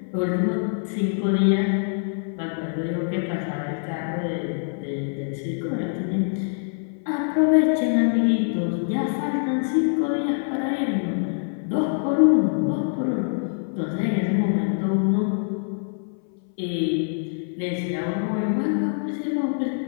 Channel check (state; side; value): silent; right; 62 dB below the other